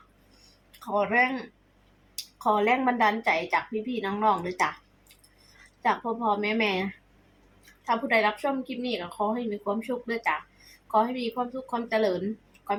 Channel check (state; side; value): identical; both; correlation 1.00